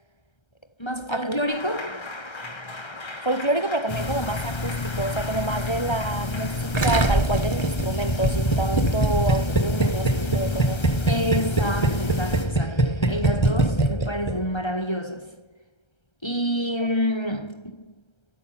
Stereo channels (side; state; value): right; late; 1.3 ms